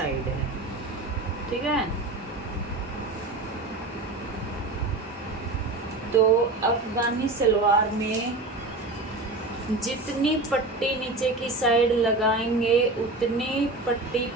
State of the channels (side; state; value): left; quieter; 3.1 dB